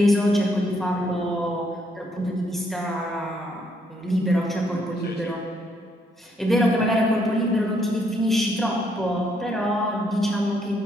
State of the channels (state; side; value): normal; both; correlation 0.72